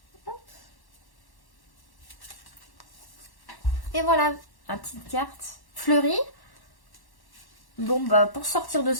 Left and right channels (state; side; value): late; right; 1.1 ms